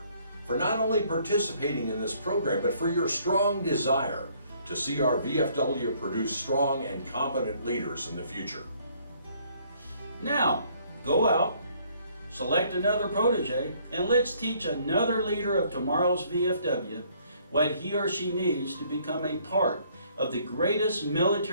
for not only participating in this program, but for your strong desire to see our VFW produce strong and competent leaders in the future. Now, go out, select another protege, and let's teach another leader of tomorrow's VFW what he or she needs to become a part of the greatest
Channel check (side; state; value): both; inverted; correlation -0.63